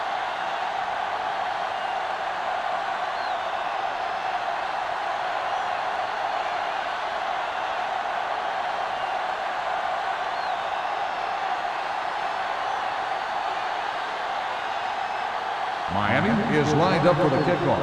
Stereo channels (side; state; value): both; identical; correlation 1.00